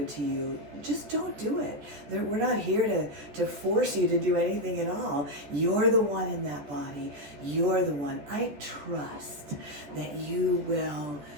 to you, just don't do it. We're not here to force you to do anything at all. You're the one in that body. You're the one. I trust that you will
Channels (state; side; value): late; left; 14 ms